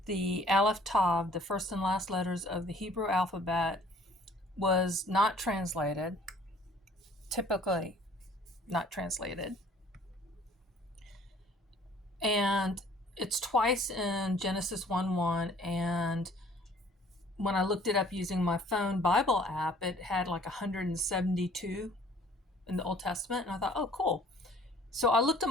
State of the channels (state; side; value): normal; both; correlation 0.55